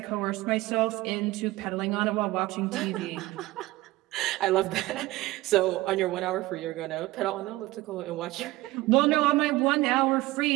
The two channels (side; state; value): left; quieter; 18.5 dB